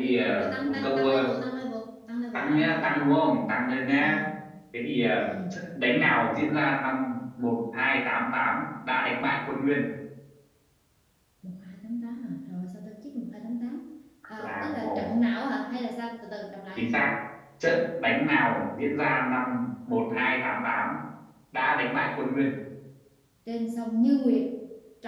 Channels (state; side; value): identical; both; correlation 1.00